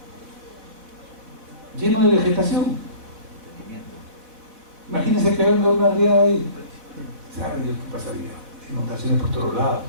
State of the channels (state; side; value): late; left; 4.1 ms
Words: lleno de vegetación. Imagínense que venga una riada ahí. ¿Sabe Dios qué pasaría? Inundaciones por todos lados.